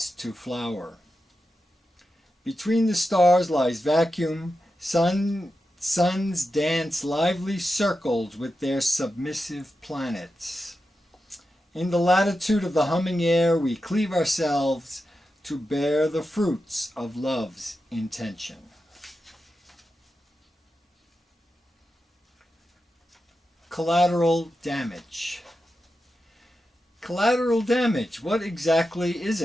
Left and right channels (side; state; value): both; normal; correlation 0.90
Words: to flower. Between the stars lies vacuum. Suns dance lively circles with their submissive planets. In the latitude of the humming air, we cleave ourselves to bear the fruits of love's intention. Collateral damage. Collateral damage, what exactly is